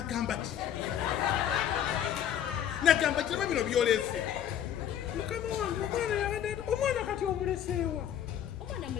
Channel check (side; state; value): right; quieter; 10.1 dB